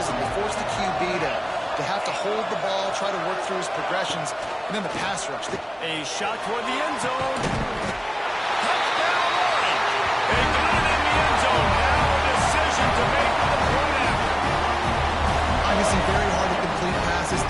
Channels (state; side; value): identical; both; correlation 1.00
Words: and they force the QB to have to hold the ball, try to work through his progressions, and then the pass rush. A shot toward the end zone. Touchdown, Warren. They got it in the end zone. Now a decision to make for the point after. Obviously very hard to complete passes